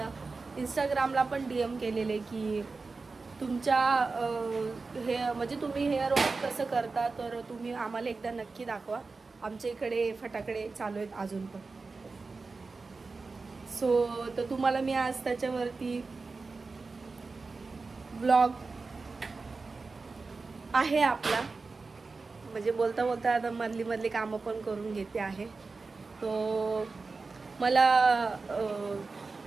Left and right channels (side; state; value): left; quieter; 4.1 dB